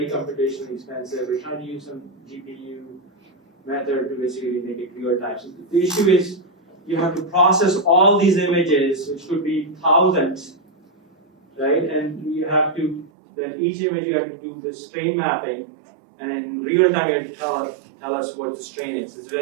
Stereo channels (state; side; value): drops out; left; at 13.1 s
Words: computationally expensive. We're trying to use some GPU method to basically make it real time. So the issue is you have to process all these images, which could be thousands, right? And you have to, then each image you have to do the strain mapping, and in real time you have to tell us what the strain is. It's